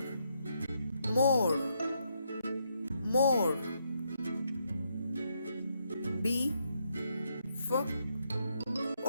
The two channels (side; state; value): both; inverted; correlation -0.77